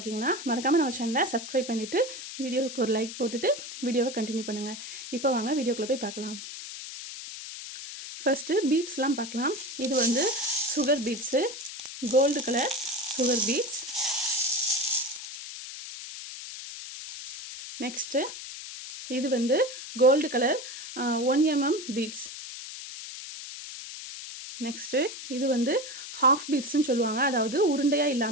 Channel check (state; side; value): noise; left; hiss, 10 dB below the sound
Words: மறக்காமல் நம்ம சேனலை சப்ஸ்கிரைப் பண்ணிவிட்டு வீடியோவுக்கு ஒரு லைக் போட்டுட்டு வீடியோவை கண்டினியூ பண்ணுங்கள். இப்போ வாங்க வீடியோக்குள்ளே போய் பார்க்கலாம். ஃபஸ்ட்டு பீட்ஸ்லாம் பார்க்கலாம். இது வந்து sugar beads, gold colour sugar beads. Next இது வந்து gold colour 1 mm beads. Next இது வந்து ஹாஃப் பீட்ஸ்ன்னு சொல்லுவாங்க. அதாவது உருண்டையாக